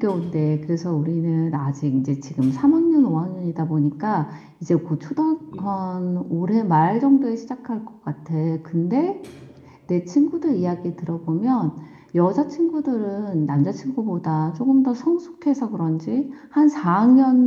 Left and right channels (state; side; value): identical; both; correlation 1.00